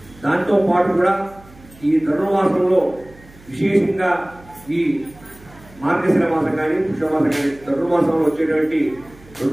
దాంతో పాటు కూడా ఈ ధనుర్మాసంలో విశేషంగా ఈ మార్గశిర మాసం కానీ పుష్యమాసం కానీ ధనుర్మాసంలో వచ్చేటువంటి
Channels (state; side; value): noise; right; hum, 24 dB below the sound